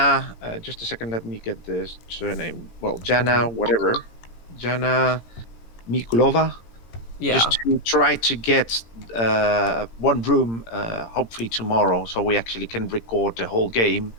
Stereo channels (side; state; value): right; late; 17 ms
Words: Just a second, let me get the surname. Well, Jana, whatever. Jana Mikulova. Yeah. Just to try to get one room, hopefully tomorrow, so we actually can record the whole game